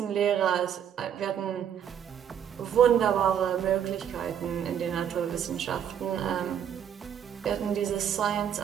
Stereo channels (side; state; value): left; quieter; 8.9 dB